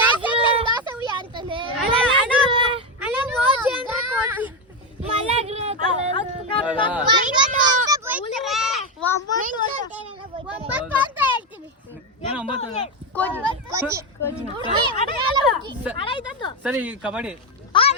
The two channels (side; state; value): both; normal; correlation 0.10